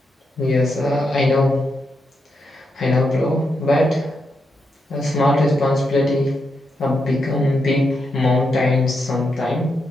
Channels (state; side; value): normal; both; correlation 0.83